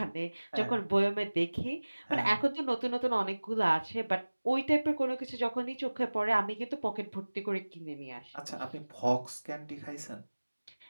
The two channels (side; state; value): both; inverted; correlation -1.00